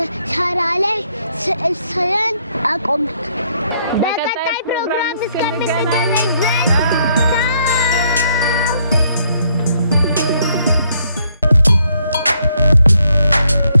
ሻራ ላይ ስዕል ስለን አቆምን። በቀጣይ ፕሮግራም እስከምንገናኝ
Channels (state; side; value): inverted; both; correlation -0.71